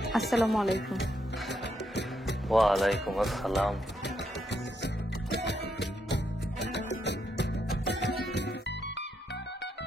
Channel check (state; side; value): normal; both; correlation 0.78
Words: আসসালামু আলাইকুম। ওয়ালাইকুম আসসালাম।